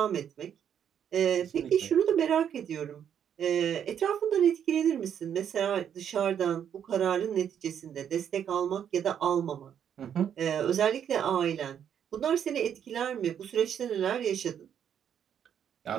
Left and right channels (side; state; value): left; quieter; 8.8 dB